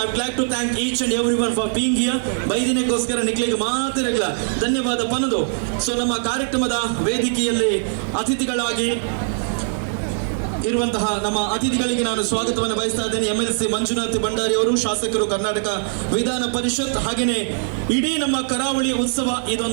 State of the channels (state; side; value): silent; left; digital silence